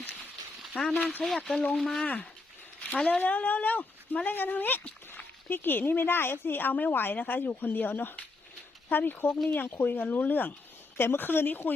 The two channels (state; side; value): quieter; right; 3.4 dB